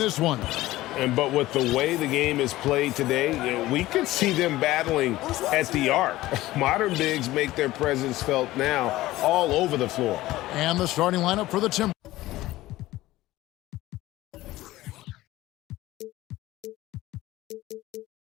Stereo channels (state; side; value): quieter; right; 16.9 dB